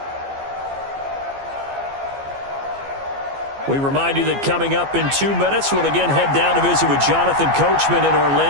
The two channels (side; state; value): left; late; 15 ms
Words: We remind you that coming up in 2 minutes, we'll again head down to visit with Jonathan Coachman in